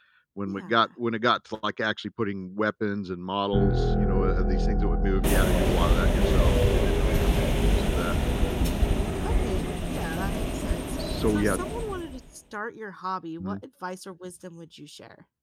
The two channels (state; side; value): identical; both; correlation 1.00